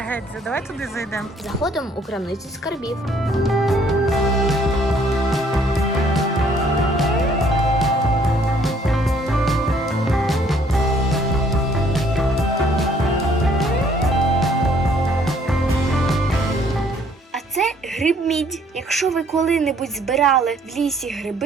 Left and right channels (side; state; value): both; normal; correlation 0.62